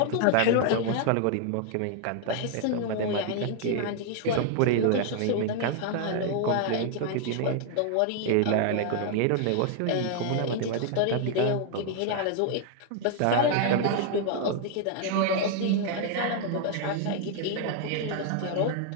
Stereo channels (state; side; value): different; both; correlation 0.00